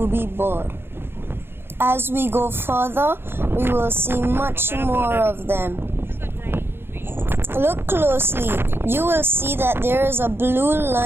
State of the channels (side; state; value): left; late; 0.11 ms